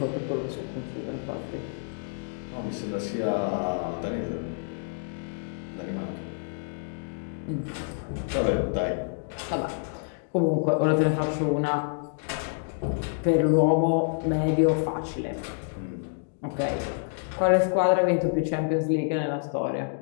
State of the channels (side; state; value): right; silent; digital silence